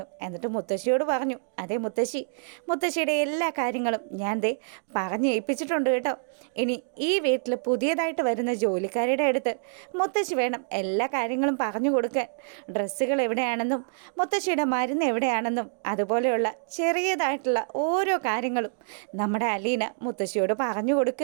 എന്നിട്ട് മുത്തശ്ശിയോട് പറഞ്ഞു, അതേ മുത്തശ്ശിയുടെ എല്ലാ കാര്യങ്ങളും ഞാൻ പറഞ്ഞ് ഏൽപ്പിച്ചിട്ടുണ്ട് കേട്ടോ. ഇനി ഈ വീട്ടിൽ പുതിയതായിട്ട് വരുന്ന ജോലിക്കാരുടെ അടുത്ത് മുത്തശ്ശി വേണം എല്ലാ കാര്യങ്ങളും പറഞ്ഞു കൊടുക്കാൻ. ഡ്രസ്സുകൾ എവിടെയാണെന്നും മുത്തശ്ശിയുടെ മരുന്ന് എവിടെയാണെന്നും അതുപോലെയുള്ള ചെറിയതായിട്ടുള്ള ഓരോ കാര്യങ്ങളും നമ്മുടെ അലീന മുത്തശ്ശിയോട് പറഞ്ഞു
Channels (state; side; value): silent; left; digital silence